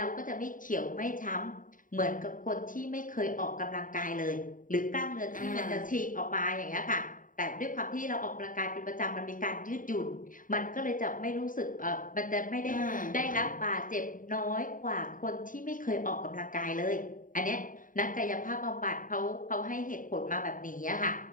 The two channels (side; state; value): right; late; 0.39 ms